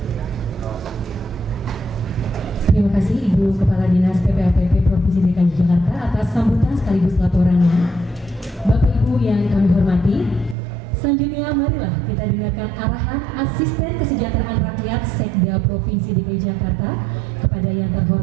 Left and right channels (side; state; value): left; drops out; at 10.6 s